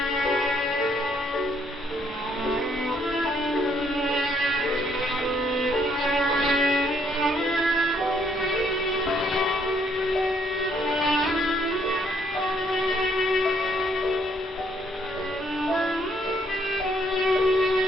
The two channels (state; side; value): normal; both; correlation 0.69